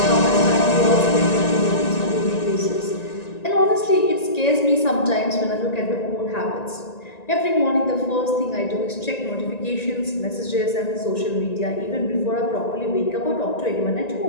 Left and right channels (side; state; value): right; late; 1.9 ms